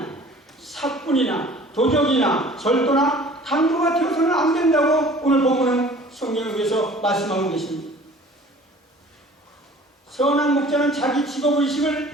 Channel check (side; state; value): both; normal; correlation 0.48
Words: 사꾼이나 도적이나 절도나 강도가 되어서는 안 된다고 오늘 본문은 성경에 의해서 말씀하고 계십니다. 선한 목자는 자기